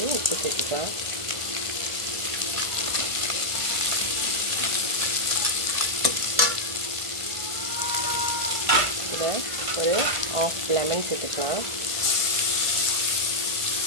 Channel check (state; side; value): late; left; 1.5 ms